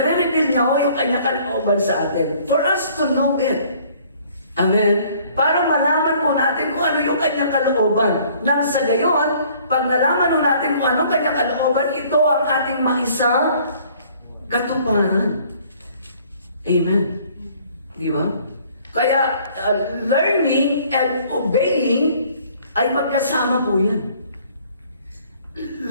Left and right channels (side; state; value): both; inverted; correlation -0.57